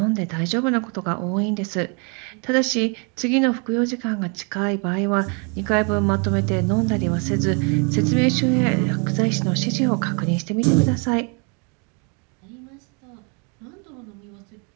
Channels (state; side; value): quieter; left; 35.5 dB